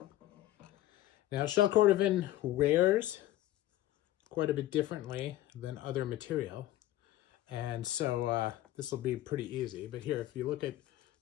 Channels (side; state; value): right; quieter; 14.7 dB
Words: Now, shell Cordovan wears quite a bit differently than other material, and so this will be pretty easy. But here, if you look at